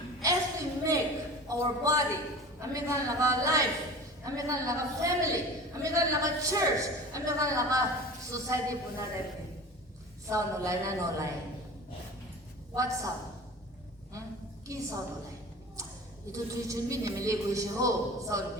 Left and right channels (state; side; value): normal; both; correlation 0.37